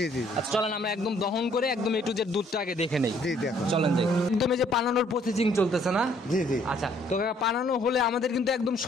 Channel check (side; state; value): both; normal; correlation 0.63